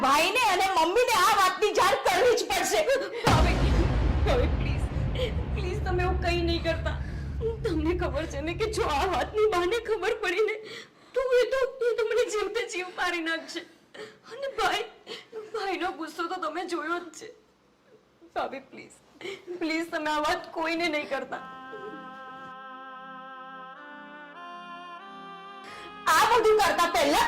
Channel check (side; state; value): both; identical; correlation 1.00